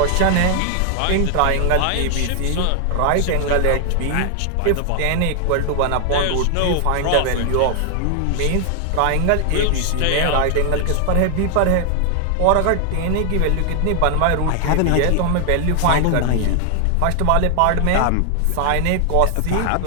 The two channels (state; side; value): different; both; correlation 0.00